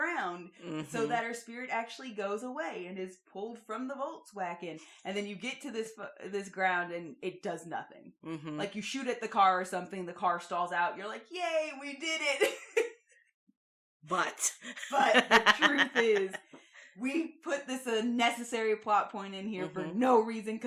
so that her spirit actually goes away and is pulled from the Volkswagen. And then you get to this ground and it does nothing. Like you shoot at the car or something, the car stalls out. You're like, yay, we did it. But the truth is, we put this unnecessary plot point in here for no reason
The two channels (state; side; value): identical; both; correlation 1.00